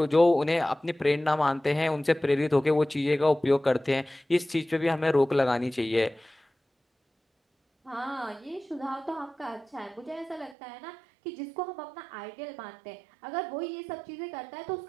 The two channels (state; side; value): drops out; left; at 10.6 s